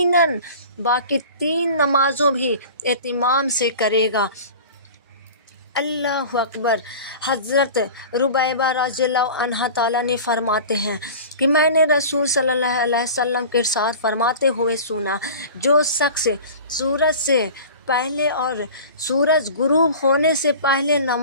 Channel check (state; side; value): inverted; both; correlation -0.38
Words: باقی 3 نمازوں بھی اہتمام سے کرے گا۔ اللہ اکبر۔ حضرت ربیبہ رضی اللہ عنہ تعالیٰ نے فرماتے ہیں کہ میں نے رسول صلی اللہ علیہ وسلم کے ارشاد فرماتے ہوئے سنا، جو شخص سورج سے پہلے اور سورج غروب ہونے سے پہلے